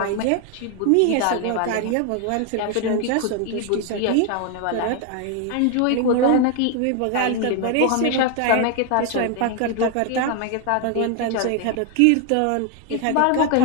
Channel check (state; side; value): different; both; correlation 0.01